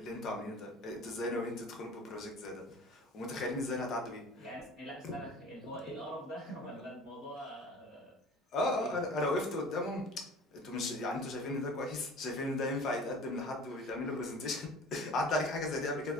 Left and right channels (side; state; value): both; normal; correlation 0.43